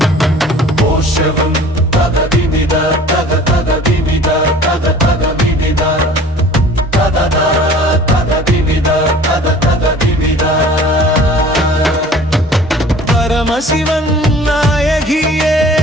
போஷவம் தகதிமித தக தகதிமித தக தகதிமித ததத தகதிமித தத தகதிமித பரமசிவன் நாயகியே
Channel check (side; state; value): both; normal; correlation 0.47